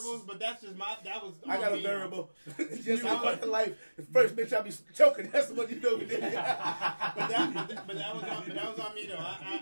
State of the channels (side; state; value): both; inverted; correlation -1.00